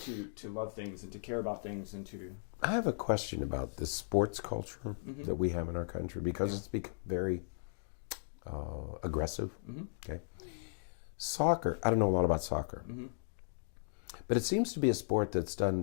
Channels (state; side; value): silent; right; digital silence